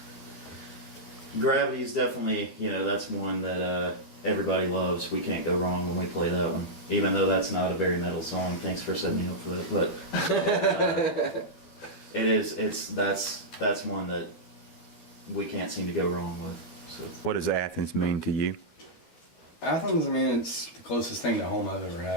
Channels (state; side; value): late; right; 12 ms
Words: Gravity is definitely, you know, that's one that everybody loves. We can't go wrong when we play that one, even though that's not a very metal song. Thanks for setting me up for that, but that's one that we can't seem to go wrong with. So. What does Athens mean to you? Athens, I mean, it's the closest thing to home I've ever